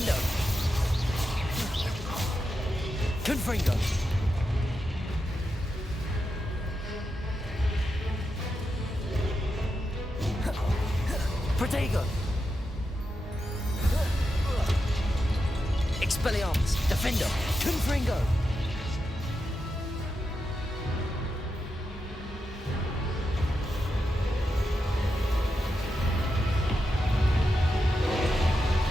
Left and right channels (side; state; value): both; normal; correlation 0.88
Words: Confringo. Protego. Expelliarmus. Defendo. Confringo.